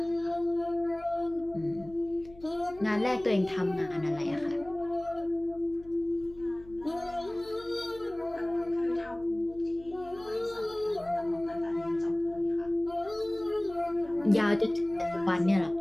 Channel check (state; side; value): noise; left; hum, 21 dB below the sound